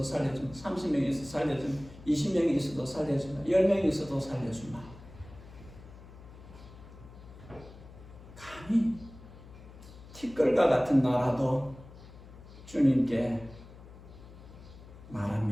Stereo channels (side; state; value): left; noise; hum, 18 dB below the sound